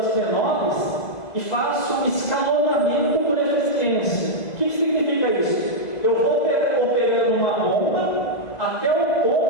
menores e faço escalonamento por eficiência. O que significa isso? Eu vou operando uma bomba até o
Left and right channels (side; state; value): right; late; 2.0 ms